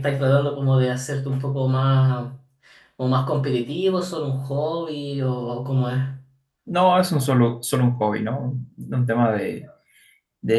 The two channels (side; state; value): both; identical; correlation 1.00